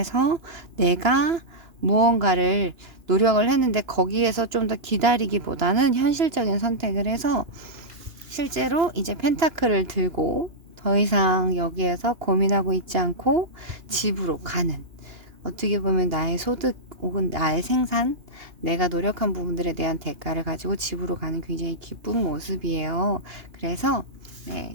내가 무언가를 노력을 했는데 거기에서 좀 더 기다리기보다는 현실적인 선택을 해서 실제로 이제 펜타클을 들고 더 이상 여기에서 고민하고 있지 않고 집으로 가는, 어떻게 보면 나의 소득 혹은 나의 생산, 내가 노력한 부분들에 대한 대가를 가지고 집으로 가는 굉장히 기쁜 모습이에요. 그래서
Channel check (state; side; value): late; left; 2.8 ms